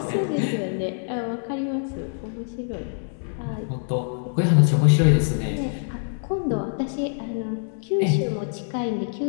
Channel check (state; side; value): silent; right; digital silence